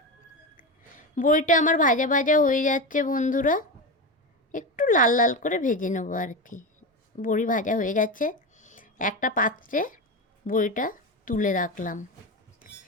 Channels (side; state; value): both; normal; correlation 0.20